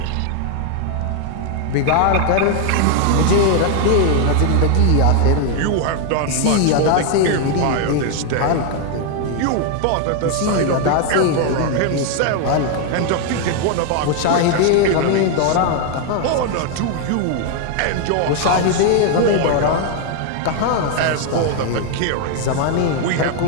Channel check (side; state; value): both; different; correlation 0.01